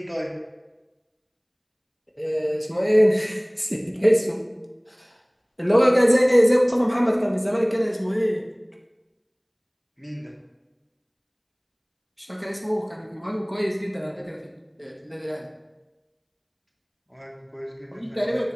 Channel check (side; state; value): both; identical; correlation 1.00